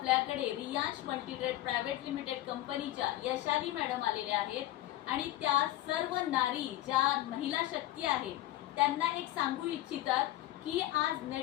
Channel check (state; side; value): quieter; right; 15.1 dB